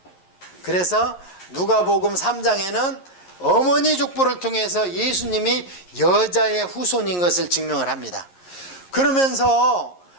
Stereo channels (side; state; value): right; late; 11 ms